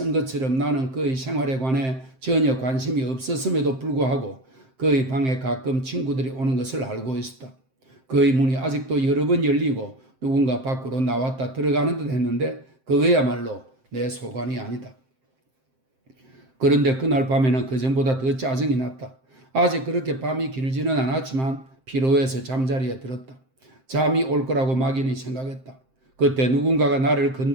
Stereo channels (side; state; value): left; late; 7.6 ms